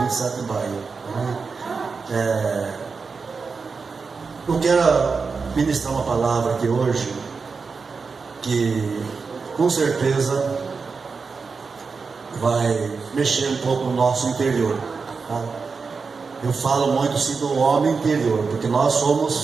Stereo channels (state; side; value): quieter; left; 4.9 dB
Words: 27 de maio. Eu quero ministrar uma palavra aqui hoje, que com certeza vai mexer um pouco no nosso interior, tá? Eu falo muito sim do homem interior, porque nós